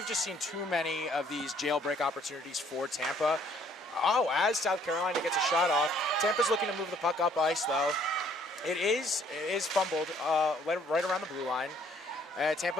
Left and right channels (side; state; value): both; normal; correlation 0.62